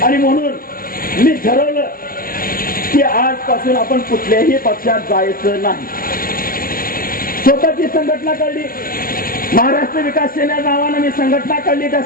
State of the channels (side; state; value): right; late; 0.42 ms